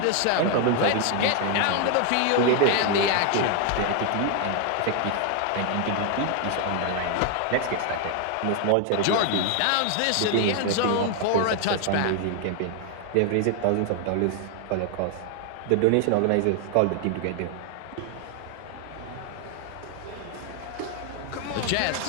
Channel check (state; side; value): different; both; correlation 0.00